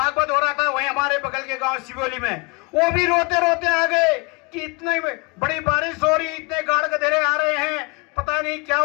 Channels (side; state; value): right; quieter; 29.4 dB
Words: हो रहा था, वहीं हमारे बगल के गांव सिवोली में, वो भी रोते रोते आ गए कि इतनी बड़ी बारिश हो रही, इतने गाड़ गधेरे आ रहे हैं, पता नहीं क्या